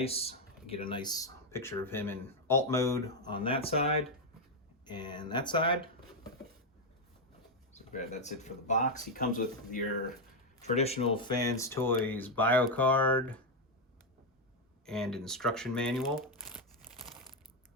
You get a nice picture of him in alt mode on that side and that side. So that's it for the box. He comes with your traditional Fans Toys bio card and instruction manual.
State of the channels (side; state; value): both; normal; correlation 0.04